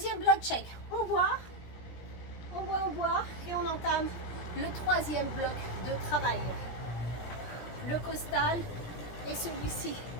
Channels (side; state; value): right; late; 17 ms